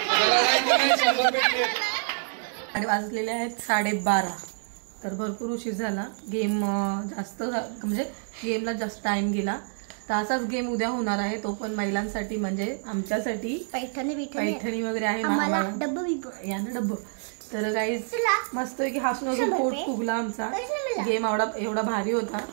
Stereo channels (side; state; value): left; silent; 60 dB below the other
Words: भेटले आणि वाजलेले आहेत 12:30 तर भरपूर उशीर झाला गेम जास्त म्हणजे गेमला जास्त टाइम गेला तर असाच गेम उद्या होणार आहे तो पण महिलांसाठी म्हणजे आमच्यासाठी पैठणी वगैरे आहे यानं डब्ब तर गाईज मस्त की हसून हसून पोट फुगला आमचा गेम एवढा भारी होता